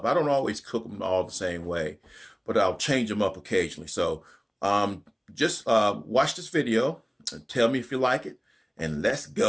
I don't always cook them all the same way, but I'll change them up occasionally. So just watch this video and tell me if you like it, and let's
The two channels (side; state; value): both; identical; correlation 1.00